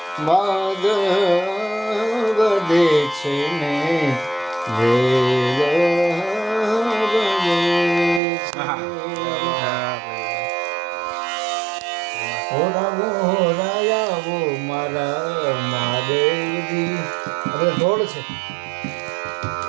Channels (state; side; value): drops out; left; at 8.2 s